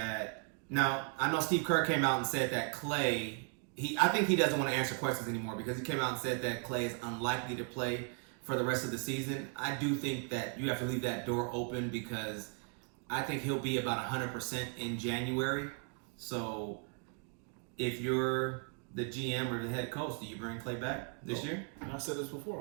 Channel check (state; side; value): quieter; left; 37.4 dB